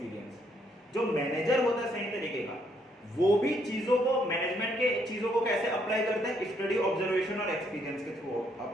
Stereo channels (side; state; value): both; normal; correlation 0.71